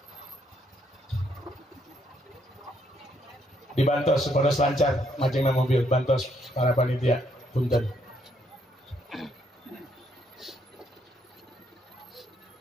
Dibantos supados lancar majengna mobil, bantos para panitia. Punten.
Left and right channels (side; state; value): both; normal; correlation 0.72